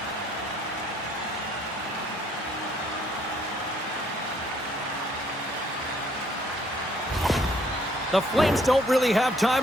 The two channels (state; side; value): normal; both; correlation 0.65